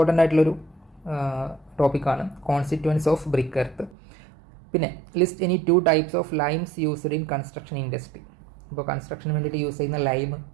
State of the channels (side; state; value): left; drops out; at 4.0 s